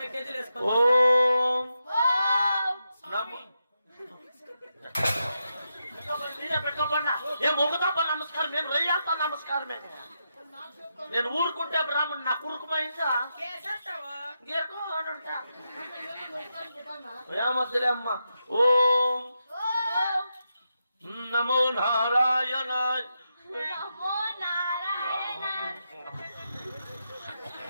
కేజీలు వేసుకో ఓం నమో ఏ మొగతప్ప నమస్కారం నేను రయ్యాత నమస్కారమే నేను ఊరుకుంటే బ్రాహ్మణ్ నా కురుకుమైందా కేసంటావా ఏమద్దులే అమ్మ ఓం నమో నారాయణ నమో నారాయణ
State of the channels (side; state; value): both; inverted; correlation -0.86